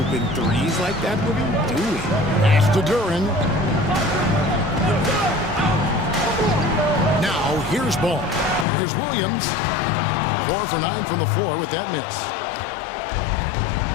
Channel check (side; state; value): right; drops out; at 8.7 s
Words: threes like that. What are you doing? Pass to Duren. Now, here's Ball. Here's Williams. 4 for 9 from the floor with that miss.